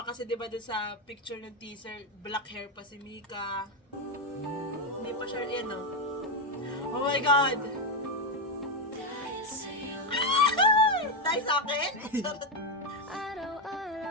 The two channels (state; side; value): normal; both; correlation 0.07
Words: kasi diba dun sa picture ng teaser, black hair pa si Mika. Hindi pa siya, yan oh. Oh my God! Dahil sa akin?